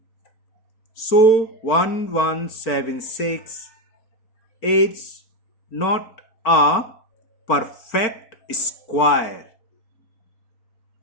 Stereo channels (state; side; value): late; right; 4.5 ms